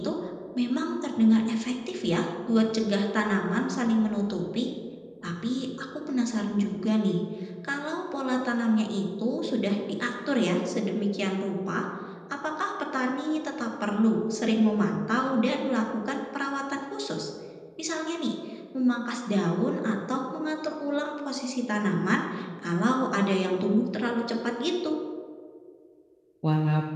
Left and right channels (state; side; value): identical; both; correlation 1.00